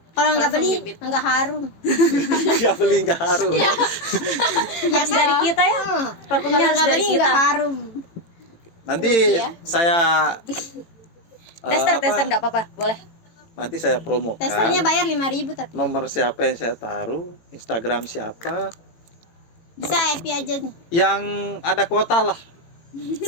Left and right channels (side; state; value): right; late; 18 ms